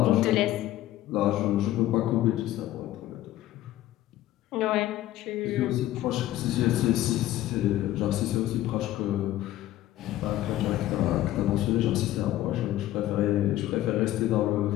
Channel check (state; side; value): quieter; right; 14.4 dB